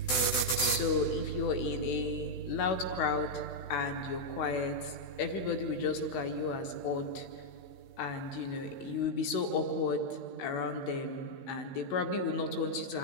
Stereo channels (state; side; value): late; right; 16 ms